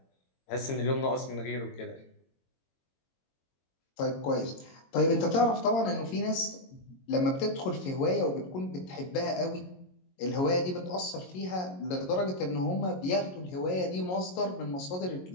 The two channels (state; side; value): late; right; 22 ms